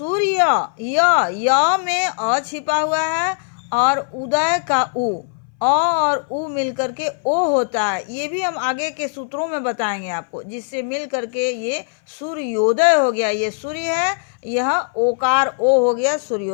य में अ छिपा हुआ है और उदय का उ, अ और उ मिलकर के ओ होता है। ये भी हम आगे के सूत्रों में बताएंगे आपको, जिससे मिल करके ये सूर्योदय हो गया। ये सूर्य है, यह ओकार ओ हो गया,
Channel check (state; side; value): silent; right; 60 dB below the other